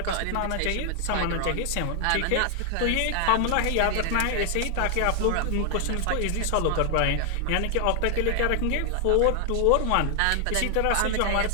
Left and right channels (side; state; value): both; different; correlation 0.00